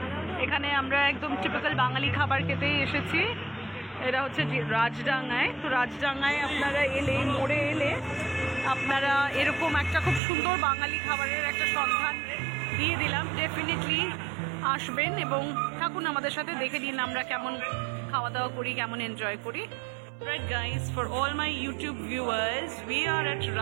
এখানে আমরা একদম typical বাঙালি খাবার খেতেই এসেছি। এটা হচ্ছে রাজডাঙ্গায়। তো রাজডাঙ্গায় আপনারা এলে, মোড়ে এলে আপনারা এরকম একটা খুব সুন্দর বাঙালি খাবারের একটা সন্ধান দিয়ে দিলাম। ডেফিনেটলি আসবেন এবং থাকুন আমাদের সাথে, দেখে নিন আমরা কেমন খাওয়া দাওয়া করি, কেমন এনজয় করি। Right guys, for all my YouTube viewers, we are at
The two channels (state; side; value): drops out; left; at 10.2 s